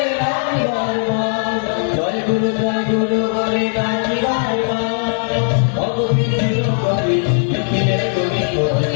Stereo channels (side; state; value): right; silent; digital silence